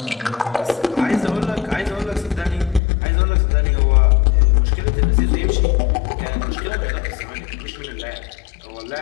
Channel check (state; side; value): drops out; right; at 2.8 s